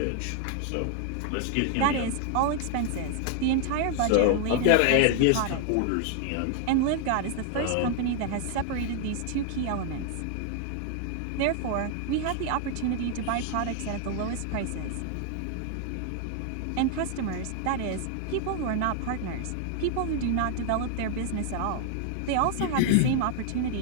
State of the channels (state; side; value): different; both; correlation 0.00